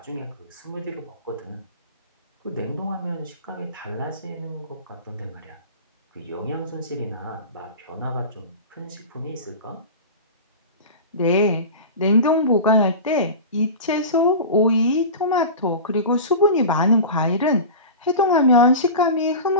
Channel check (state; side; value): inverted; both; correlation -0.30